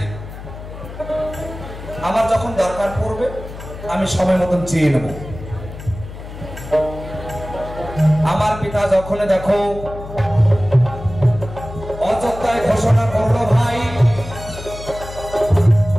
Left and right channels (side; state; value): left; noise; hum, 12 dB below the sound